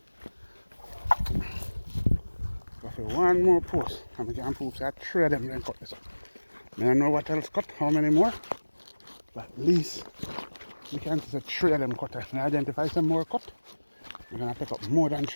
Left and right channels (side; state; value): both; inverted; correlation -1.00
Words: Go for one more post. And we can prove that three of them then cut this up. I don't know what else cut, how many more. But at least we can see three of them cut. If we identify some more cut, we're going to pick up more than